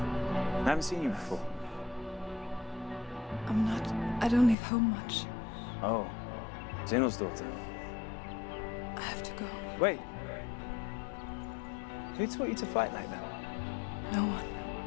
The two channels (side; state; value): right; drops out; at 4.5 s